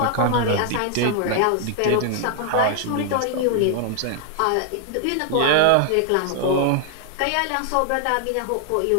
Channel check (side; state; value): both; different; correlation 0.00